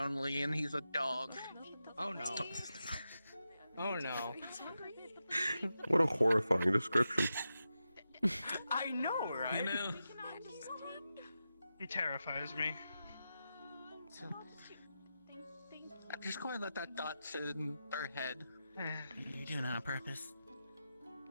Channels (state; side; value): inverted; both; correlation -0.90